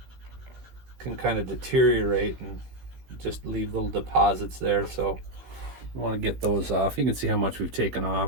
can kind of deteriorate and just leave little deposits there. So we want to get those off. You can see how much we've taken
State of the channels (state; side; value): late; left; 16 ms